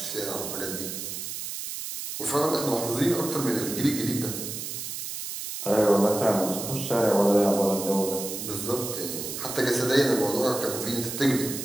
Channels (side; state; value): right; noise; hiss, 6 dB below the sound